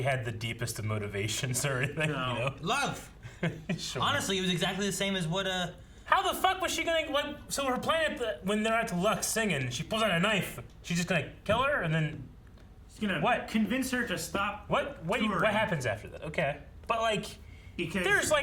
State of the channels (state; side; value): identical; both; correlation 1.00